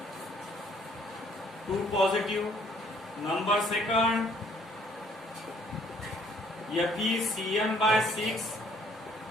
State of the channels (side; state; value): both; normal; correlation 0.62